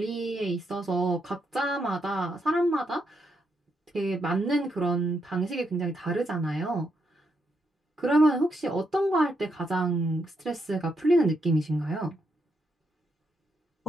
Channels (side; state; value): both; normal; correlation 0.80